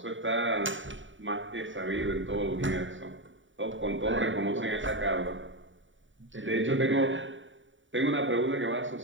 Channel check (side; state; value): left; late; 0.56 ms